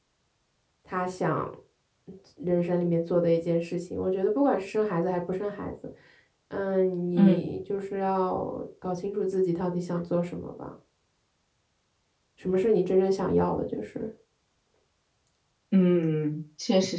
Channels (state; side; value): identical; both; correlation 1.00